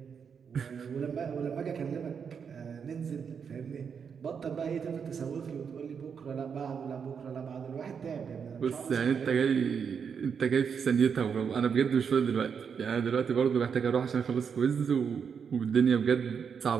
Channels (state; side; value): quieter; left; 6.7 dB